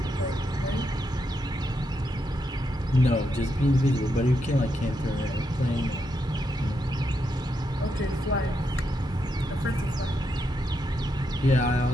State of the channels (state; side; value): normal; both; correlation 0.82